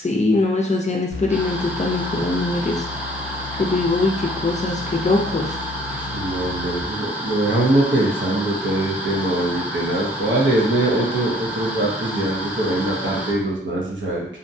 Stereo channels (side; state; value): both; normal; correlation 0.57